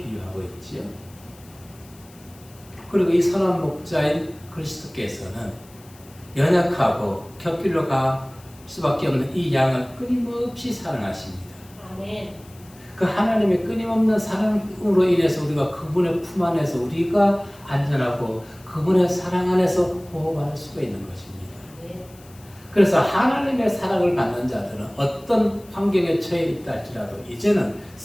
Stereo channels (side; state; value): left; noise; hiss, 25 dB below the sound